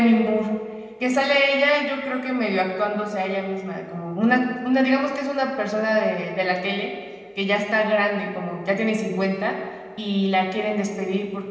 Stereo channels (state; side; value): identical; both; correlation 1.00